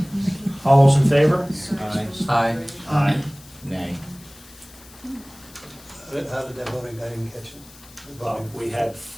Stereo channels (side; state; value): left; noise; hiss, 22 dB below the sound